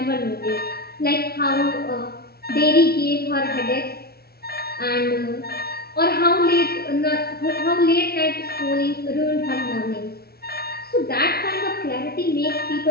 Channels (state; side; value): late; right; 0.45 ms